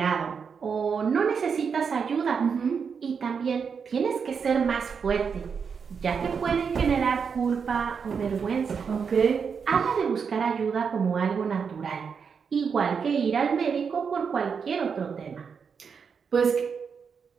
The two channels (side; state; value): left; quieter; 6.2 dB